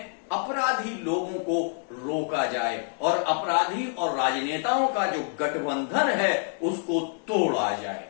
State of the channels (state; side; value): silent; right; 60 dB below the other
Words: अपराधी लोगों को रोका जाए और अपराधी और राजनेताओं का जो गठबंधन है उसको तोड़ा जाए।